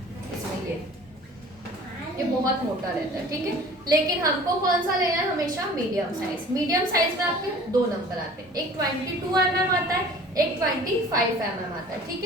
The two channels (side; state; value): both; normal; correlation 0.46